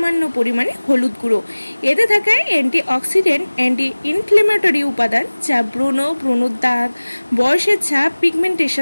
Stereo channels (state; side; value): inverted; both; correlation -1.00